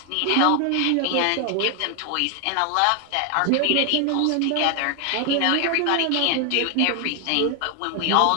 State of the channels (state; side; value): different; both; correlation 0.00